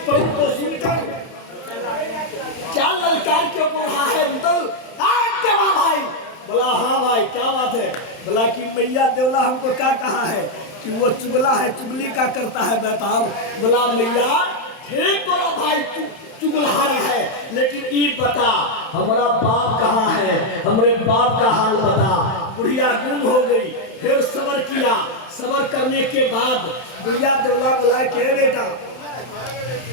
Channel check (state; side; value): late; right; 31 ms